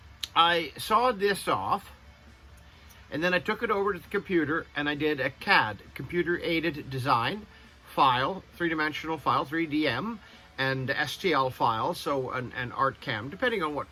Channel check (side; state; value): both; identical; correlation 1.00